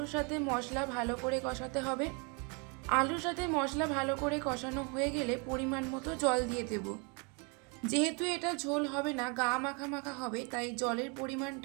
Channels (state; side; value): quieter; left; 33.5 dB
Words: সাথে মশলা ভালো করে কষাতে হবে। আলুর সাথে মশলা ভালো করে কষানো হয়ে গেলে পরিমাণ মতো জল দিয়ে দেব। যেহেতু এটা ঝোল হবে না, গা মাখা মাখা হবে, তাই জলের